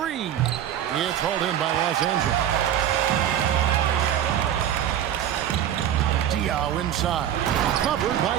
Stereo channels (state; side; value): quieter; left; 10.5 dB